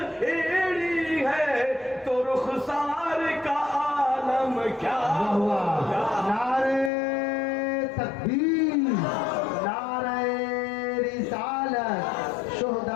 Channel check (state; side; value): drops out; right; at 6.9 s